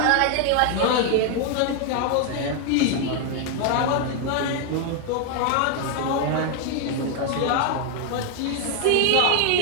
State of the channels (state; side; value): different; both; correlation 0.00